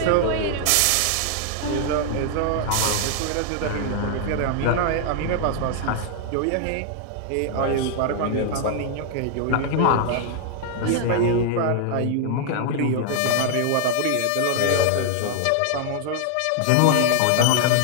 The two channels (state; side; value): different; both; correlation 0.00